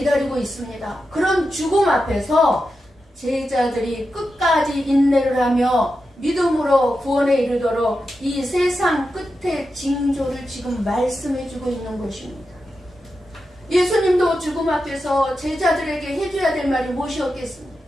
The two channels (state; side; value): normal; both; correlation 0.89